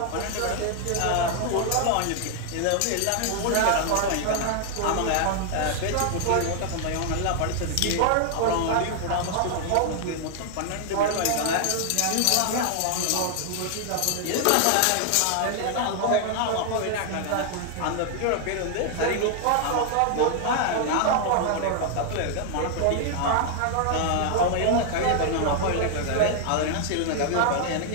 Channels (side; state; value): both; different; correlation 0.00